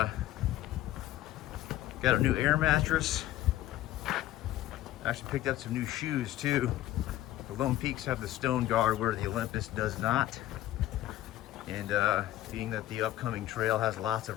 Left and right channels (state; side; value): quieter; right; 14.3 dB